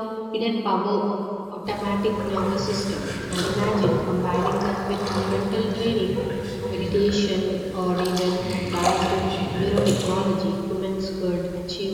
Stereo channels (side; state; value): both; identical; correlation 1.00